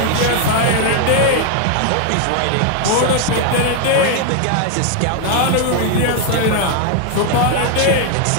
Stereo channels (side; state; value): both; different; correlation 0.00